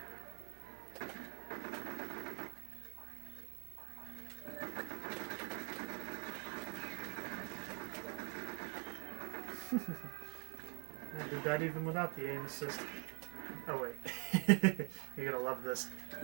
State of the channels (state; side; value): quieter; left; 32.6 dB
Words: I did that even without the aim assist. Oh wait. You're gonna love this.